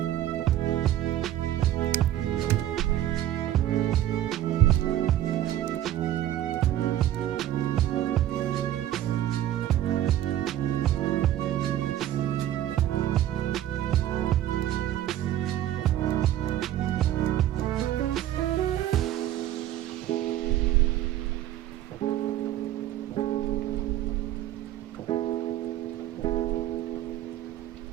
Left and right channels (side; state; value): left; quieter; 12.7 dB